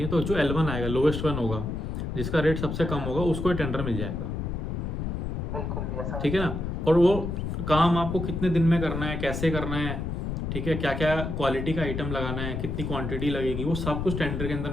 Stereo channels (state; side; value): noise; left; rumble, 3 dB below the sound